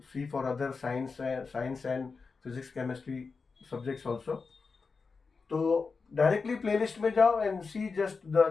see for other science and physics chemistry subjects also. तो डायरेक्टली प्लेलिस्ट में जाओ and see just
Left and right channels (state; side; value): quieter; right; 4.7 dB